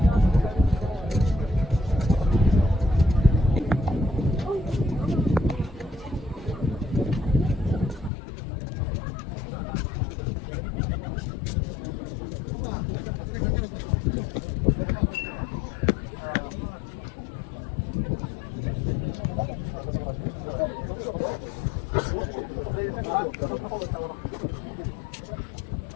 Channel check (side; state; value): right; drops out; at 8.1 s